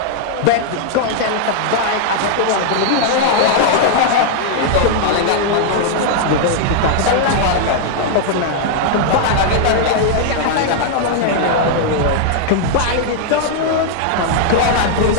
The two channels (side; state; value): both; different; correlation -0.01